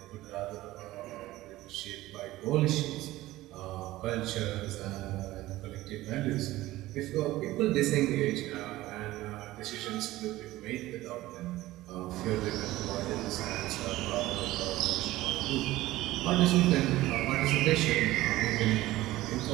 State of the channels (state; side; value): quieter; left; 16.9 dB